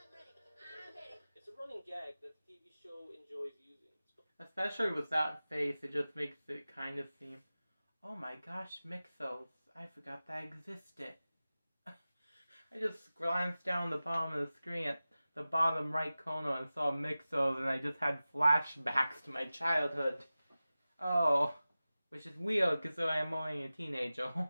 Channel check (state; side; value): inverted; both; correlation -0.96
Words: ready! I'm ready! It's a running gag that the TV show enjoys using. Especially with that face, it just makes it kind of seem, oh my gosh, Mixos. I forgot that existed. I just glanced down the bottom of the screen at the bottom right corner and saw Mixos, and I just had flashbacks to my childhood. Oh, which is weird because I'm only a teenager,